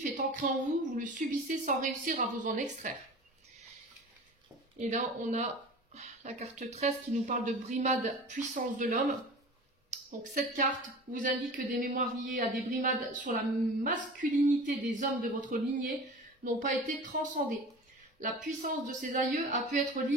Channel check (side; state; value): both; normal; correlation 0.37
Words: est ancré en vous, vous le subissez sans réussir à vous en extraire. Et là, on a la carte 13 qui nous parle de brimade, puissance de l'homme. Donc cette carte vous indique que des mémoires liées à des brimades sur la masculinité des hommes de votre lignée n'ont pas été transcendées. La puissance de ces aïeux a pu être